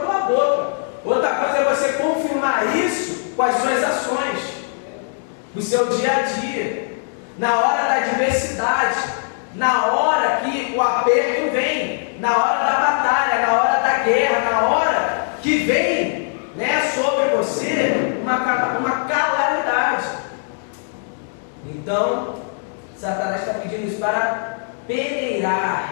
boca, outra coisa é você confirmar isso com as suas ações, no seu dia a dia, na hora da adversidade, na hora que o aperto vem, na hora da batalha, na hora da guerra, na hora que vem, né, sobre você uma calamidade. Então Satanás está pedindo isso para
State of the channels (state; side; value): silent; right; digital silence